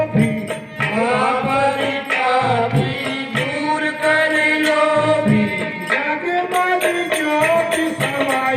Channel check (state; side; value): identical; both; correlation 1.00